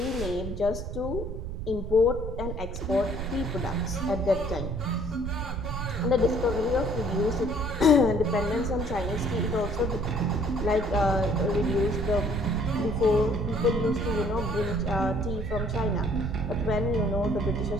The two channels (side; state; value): right; noise; rumble, 5 dB below the sound